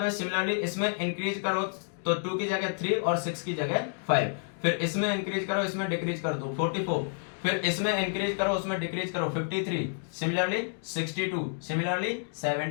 में सिमिलरली इसमें इंक्रीज करो तो 2 की जगह 3 और 6 की जगह 5। फिर इसमें इंक्रीज करो, इसमें डिक्रीज कर दो 44। फिर इसमें इंक्रीज करो, उसमें डिक्रीज करो 53, similarly 62, similarly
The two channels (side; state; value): right; silent; digital silence